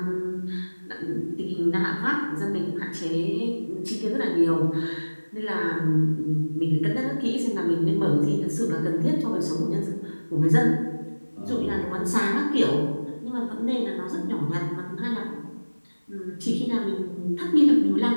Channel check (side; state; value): both; inverted; correlation -1.00